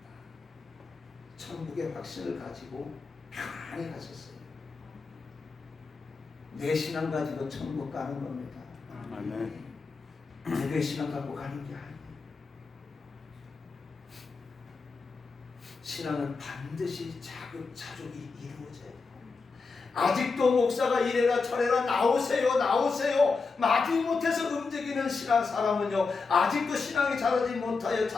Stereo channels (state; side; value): quieter; right; 4.5 dB